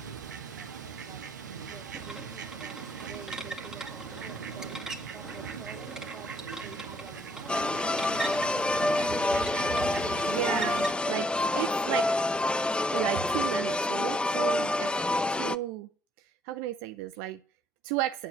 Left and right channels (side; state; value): both; normal; correlation 0.68